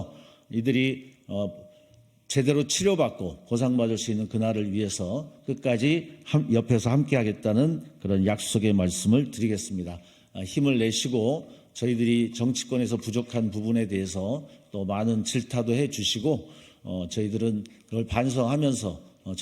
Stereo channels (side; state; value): both; identical; correlation 1.00